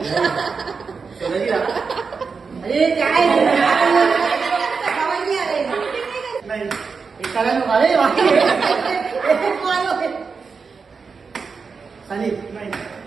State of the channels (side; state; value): left; quieter; 5.1 dB